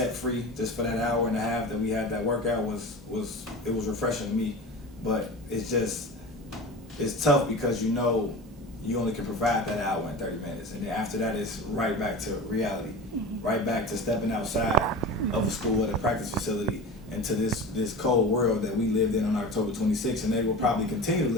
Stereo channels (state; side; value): normal; both; correlation 0.32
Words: free just for that hour and a half that we had that workout was refreshing to me. But it's tough, because you know you only can provide that hour and 30 minutes, and then after that it's right back to reality, right back to stepping outside of a school at a practice facility into this cold world that we lived in on October 26th, and they will probably continue to